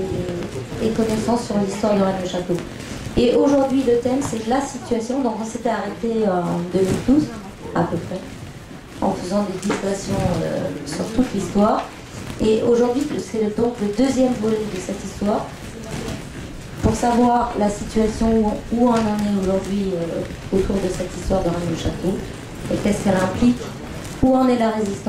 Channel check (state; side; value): identical; both; correlation 1.00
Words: et connaissance sur l'histoire de Rennes-le-Château. Et aujourd'hui le thème c'est la situation, donc on s'était arrêté en 2012 à peu près, en faisant des digressions sur toute l'histoire. Et aujourd'hui, c'est donc le deuxième volet de cette histoire. Pour savoir la situation où on en est aujourd'hui autour de cette histoire de Rennes-le-Château, et qu'est-ce qu'elle implique, où en est la